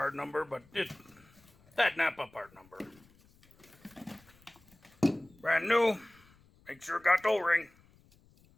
number, but that Napa part number. Brand new. Make sure it got the O-ring.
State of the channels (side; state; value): left; noise; rumble, 29 dB below the sound